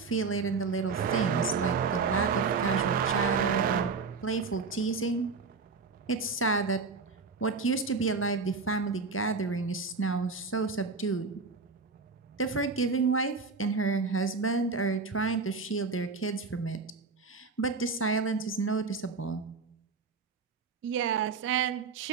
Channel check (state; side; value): quieter; left; 4.6 dB